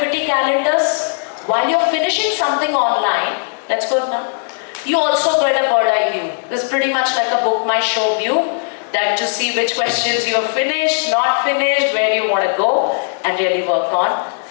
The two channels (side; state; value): right; silent; digital silence